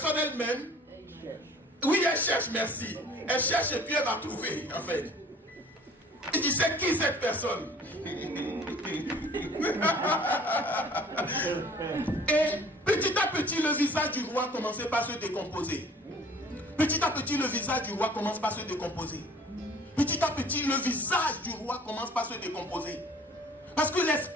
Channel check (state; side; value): normal; both; correlation 0.51